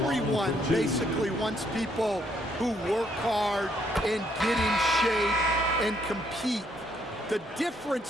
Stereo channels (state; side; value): normal; both; correlation 0.70